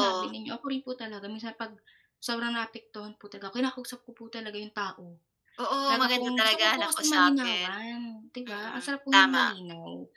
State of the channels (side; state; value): both; identical; correlation 1.00